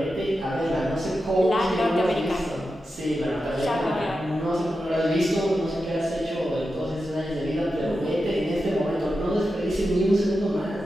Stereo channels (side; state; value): both; normal; correlation 0.90